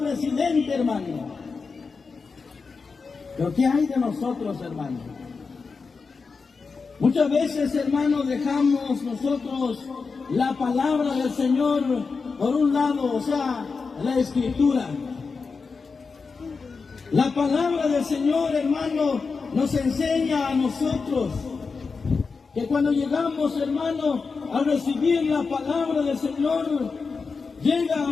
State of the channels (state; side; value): quieter; right; 4.8 dB